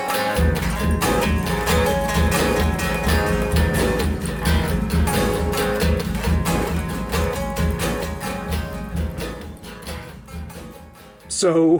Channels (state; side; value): identical; both; correlation 1.00